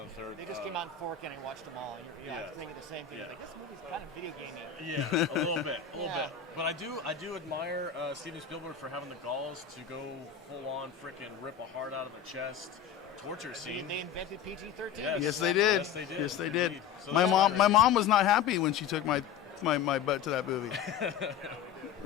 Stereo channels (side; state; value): right; quieter; 8.2 dB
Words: third. They just came out in 4K and I watched them all. And Yeah. I was thinking the same thing. Yeah. Like, this movie's kind of video gamey. Yeah, a little bit. Yeah. But I do admire Steven Spielberg for having the galls to go full on frickin' rip a heart out of the chest, torture scene. They invented PG-13. Yes, they did. Yes, they did. Yes, they did. Indeed. So My that's mom was not happy when she took my butt to that movie.